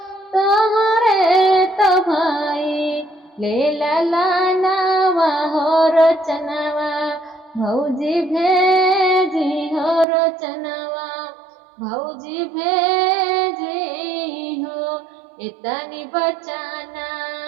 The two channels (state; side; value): drops out; left; at 10.1 s